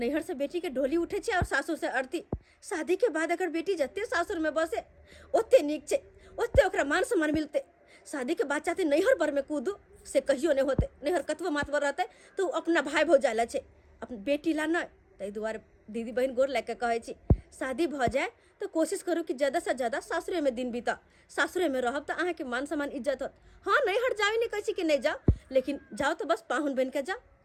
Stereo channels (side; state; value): both; identical; correlation 1.00